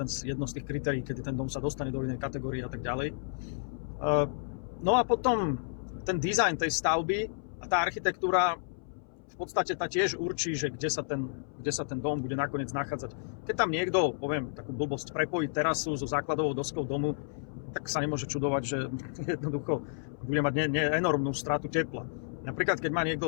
jedno z tých kritérií, kedy ten dom sa dostane do inej kategórie a tak ďalej. No a potom ten dizajn tej stavby a tá architektúra v podstate tá tiež určí, že kde sa ten dom bude nakoniec nachádzať. Keď tam niekto, poviem takú blbosť, prepojí terasu so základovou doskou domu, tak sa nemôže čudovať, že jednoducho bude mať enormnú stratu tepla. Napríklad, keď má niekto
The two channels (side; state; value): right; silent; 57 dB below the other